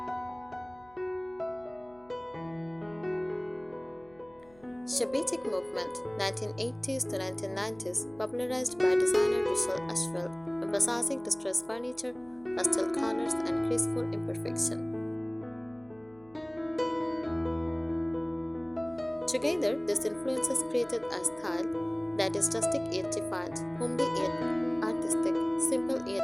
Shabbatic movement, 1980s to 1990s, popularized by designer Russell Ashwell, emphasizing distressed furniture, pastel colors, and graceful imperfection. Together, these influences created a style that is rustic yet defiant, homely yet artistic, simple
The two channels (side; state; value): left; noise; hum, 28 dB below the sound